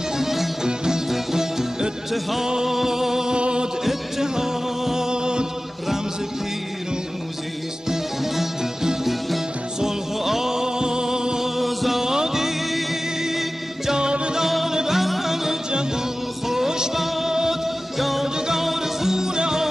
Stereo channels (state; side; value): normal; both; correlation 0.96